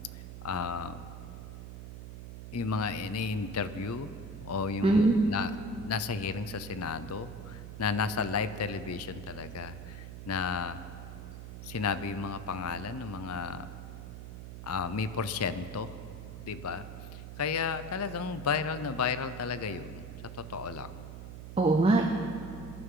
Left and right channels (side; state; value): right; noise; hum, 10 dB below the sound